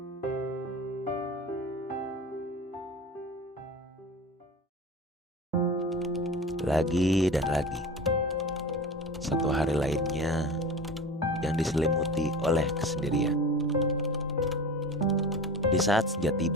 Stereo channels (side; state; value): both; normal; correlation 0.33